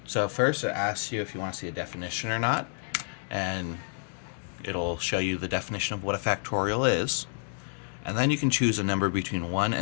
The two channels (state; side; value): silent; right; digital silence